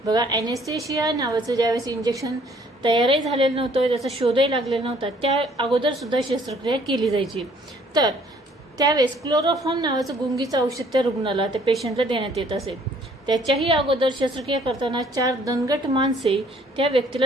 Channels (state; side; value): normal; both; correlation 0.60